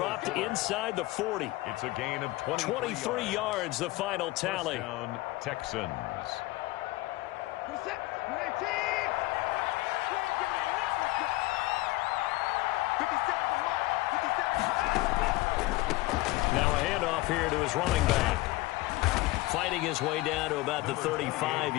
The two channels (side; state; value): right; quieter; 19.7 dB